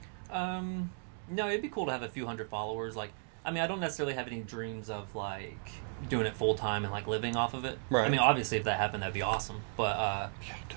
No, it'd be cool to have a few hundred followers. Like, I mean, I don't necessarily have any dreams of like doing it full time and like living off of it. Right. I mean, obviously, if that happened, that'd be awesome. But I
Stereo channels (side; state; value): left; silent; 55 dB below the other